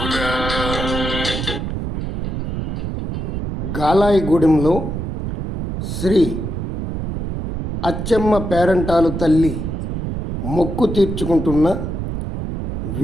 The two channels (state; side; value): noise; right; rumble, 3 dB below the sound